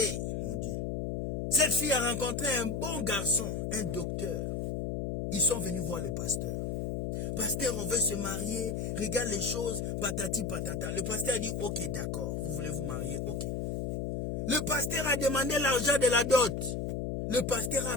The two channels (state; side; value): noise; left; hum, 1 dB below the sound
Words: mon Dieu. Cette fille a rencontré un bon garçon, un docteur. Ils sont venus voir le pasteur. Pasteur, on veut se marier, regarde les choses, patati patata. Le pasteur a dit, ok, d'accord, vous voulez vous marier, ok. Le pasteur a demandé l'argent de la dot. Le pasteur a